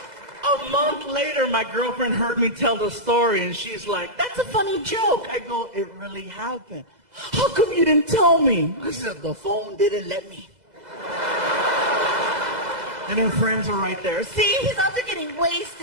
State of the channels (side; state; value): left; late; 2.0 ms